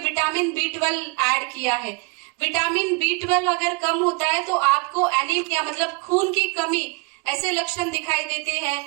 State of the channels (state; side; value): quieter; left; 31.3 dB